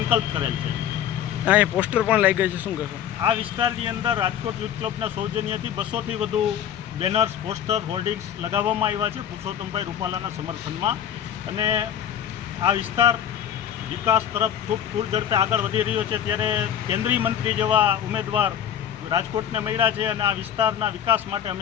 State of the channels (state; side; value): quieter; right; 9.7 dB